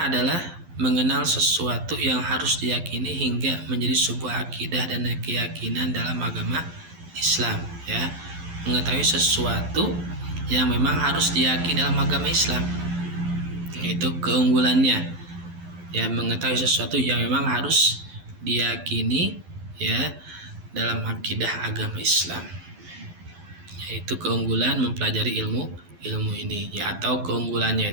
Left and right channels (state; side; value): late; left; 12 ms